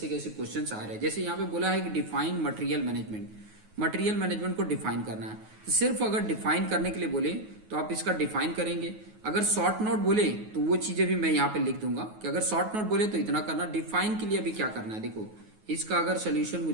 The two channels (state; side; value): late; left; 9.4 ms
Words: कैसे क्वेश्चंस आ रहे हैं। जैसे यहाँ पे बोला है कि define material management. Material management को डिफाइन करना है, तो सिर्फ अगर डिफाइन करने के लिए बोले तो आप इसका डिफाइन करेंगे। अगर शॉर्ट नोट बोले तो वो चीजें भी मैं यहाँ पे लिख दूंगा कि अगर शॉर्ट नोट बोले तो इतना करना। डिफाइन के लिए अभी क्या करना है, देखो इसका अगर सोल्यूशन